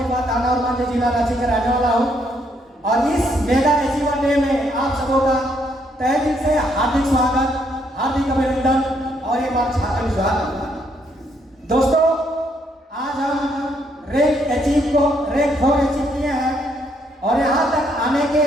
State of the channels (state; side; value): normal; both; correlation 0.72